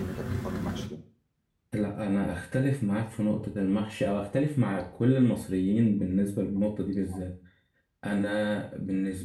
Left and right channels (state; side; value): identical; both; correlation 1.00